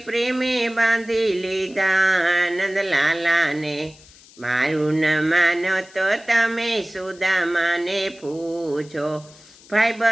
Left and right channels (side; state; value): left; noise; hiss, 24 dB below the sound